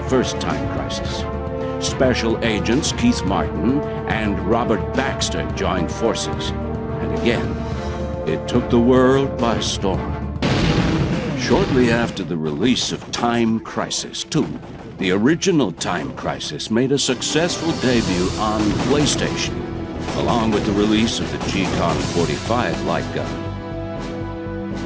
first Time Crisis. Special agents Keith Martin and Robert Baxter joined forces, and again, it took the world by storm. Shortly after the release of Time Crisis 2, the original Time Crisis made a successful debut on PlayStation, along with the release of the G-Con 45 light gun.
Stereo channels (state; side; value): identical; both; correlation 1.00